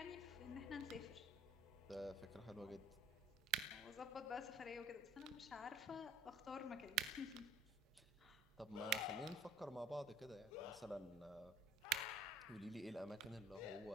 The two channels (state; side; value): normal; both; correlation 0.51